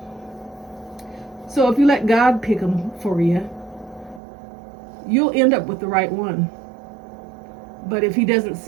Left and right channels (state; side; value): drops out; left; at 4.2 s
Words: So if you let God pick them for you, you'll end up with the right one. But if he doesn't